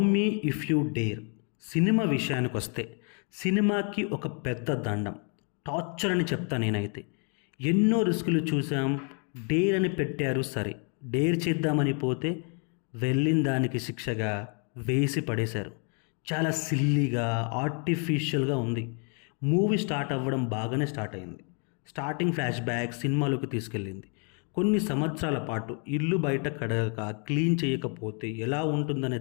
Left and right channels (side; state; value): right; quieter; 38.8 dB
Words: me if you dare cinema విషయానికి వస్తే సినిమాకి ఒక పెద్ద దండం, టార్చర్ అని చెప్తా నేనైతే. ఎన్నో రిస్కులు చూసాం, డేర్ అని పెట్టారు సరే, డేర్ చేద్దామని పోతే వెళ్ళిన దానికి శిక్షగా వేసి పడేశారు. చాలా సిల్లీగా ఆర్టిఫిషియల్గా ఉంది. మూవీ స్టార్ట్ అవ్వడం బాగానే స్టార్ట్ అయింది. స్టార్టింగ్ ఫ్లాష్ బ్యాక్ సినిమాలోకి తీసుకెళ్ళింది. కొన్ని సంవత్సరాల పాటు ఇల్లు బయట కడగక క్లీన్ చేయకపోతే ఎలా ఉంటుందనే